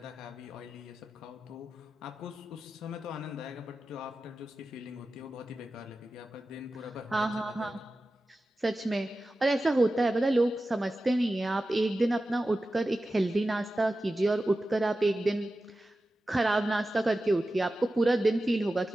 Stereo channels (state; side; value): normal; both; correlation 0.94